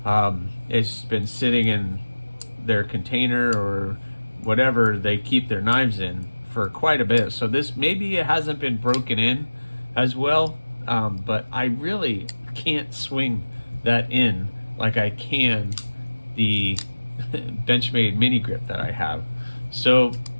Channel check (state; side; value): inverted; both; correlation -1.00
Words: It's been sitting in their container or whatever they keep their knives in for quite a bit. So this, maybe it hasn't been broken in as well, but I really can't swing that in like I can the Benchmade mini grip that I have. So